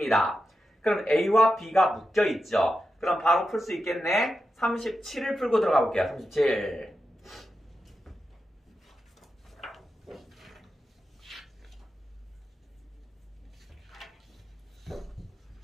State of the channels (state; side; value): normal; both; correlation 0.89